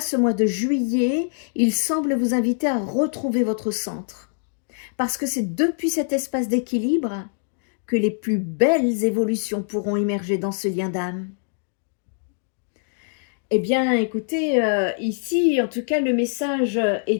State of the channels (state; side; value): silent; right; digital silence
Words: mois de juillet, il semble vous inviter à retrouver votre centre. Parce que c'est depuis cet espace d'équilibre que les plus belles évolutions pourront émerger dans ce lien d'âme. Eh bien, écoutez, ici, en tout cas, le message